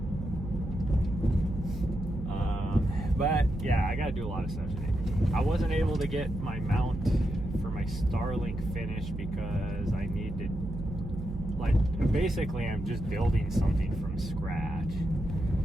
But yeah, I gotta do a lot of stuff today. I wasn't able to get my mount for my Starlink finished because I need to, like, basically I'm just building something from scratch.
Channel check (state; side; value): noise; right; hum, 8 dB below the sound